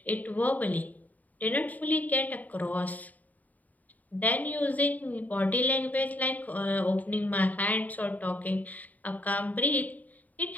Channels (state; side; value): late; right; 0.077 ms